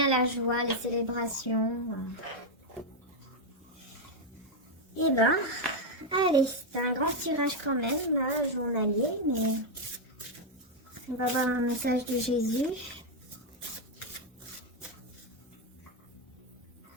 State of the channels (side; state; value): both; normal; correlation 0.01